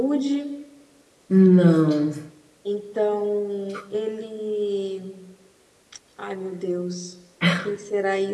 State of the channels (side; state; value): both; identical; correlation 1.00